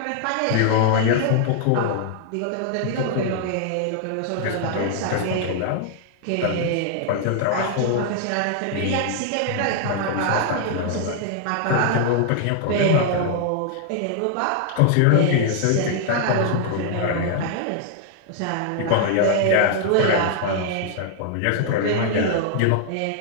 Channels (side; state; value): both; different; correlation 0.00